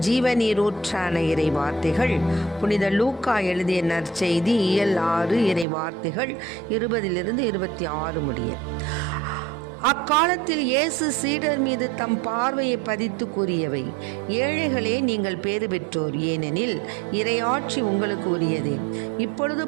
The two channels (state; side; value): drops out; left; at 5.7 s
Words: ஜீவநீரூற்றான இறை வார்த்தைகள் புனித லூக்கா எழுதிய நற்செய்தி இயல் 6 இறை வார்த்தைகள் 20 26 முடிய. அக்காலத்தில் இயேசு சீடர் மீது தம் பார்வையை பதித்து கூறியவை: ஏழைகளே, நீங்கள் பேறு பெற்றோர், ஏனெனில் இறையாட்சி உங்களுக்கு உரியதே. இப்பொழுது